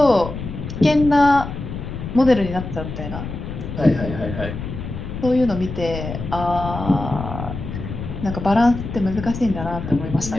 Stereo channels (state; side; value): noise; left; rumble, 8 dB below the sound